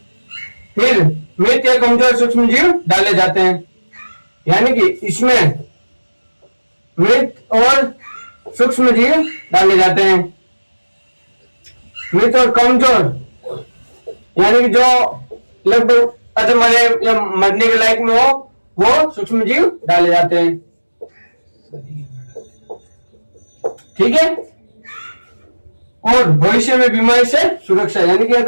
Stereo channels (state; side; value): inverted; both; correlation -1.00